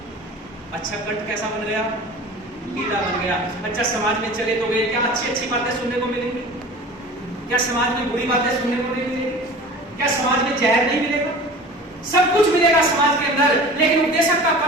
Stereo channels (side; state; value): both; normal; correlation 0.39